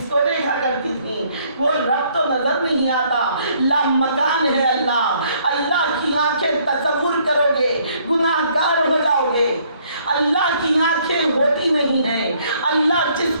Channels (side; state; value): both; inverted; correlation -0.65